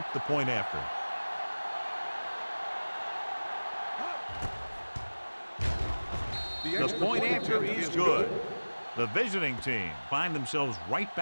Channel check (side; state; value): both; inverted; correlation -1.00